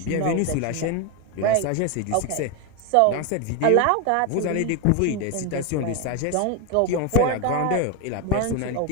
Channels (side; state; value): both; different; correlation 0.02